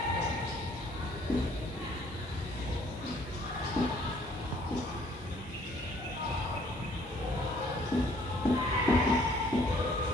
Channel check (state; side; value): normal; both; correlation 0.61